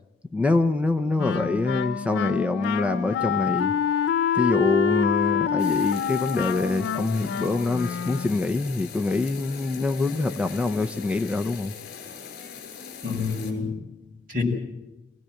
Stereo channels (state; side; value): quieter; right; 4.0 dB